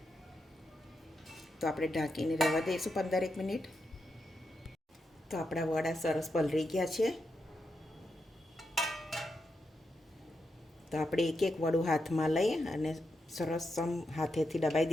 તો આપણે ઢાંકીને રહેવા દઈશું 15-1 મિનિટ. તો આપણા વડા સરસ પલળી ગયા છે. તો આપણે એક વડું હાથમાં લઈ અને સરસ હાથેથી દબાઈ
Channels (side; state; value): both; normal; correlation 0.85